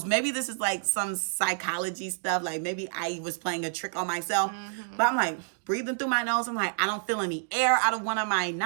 Maybe this is like some psychology stuff. Like maybe I was playing a trick on myself. But I'm like breathing through my nose. I'm like, I don't feel any air out of one of my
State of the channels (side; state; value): left; silent; digital silence